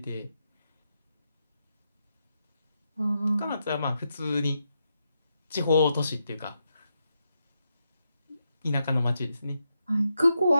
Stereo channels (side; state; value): both; inverted; correlation -0.83